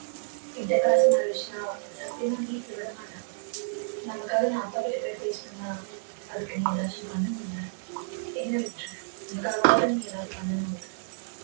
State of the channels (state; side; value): silent; left; digital silence